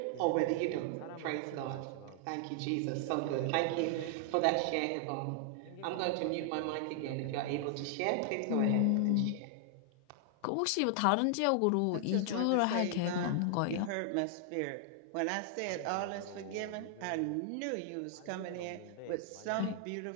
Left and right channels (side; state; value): both; different; correlation 0.00